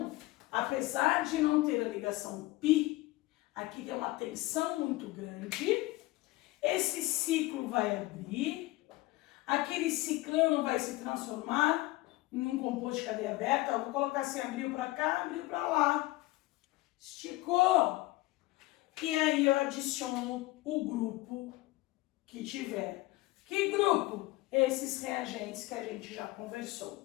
apesar de não ter a ligação π, aqui tem uma tensão muito grande, esse ciclo vai abrir, aquele ciclano vai se transformar em um composto de cadeia aberta. Eu vou colocar assim: abriu para cá, abriu para lá, esticou. E aí eu adiciono o grupo que tiver. Que grupo? Esses reagentes que a gente já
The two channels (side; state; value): right; quieter; 19.6 dB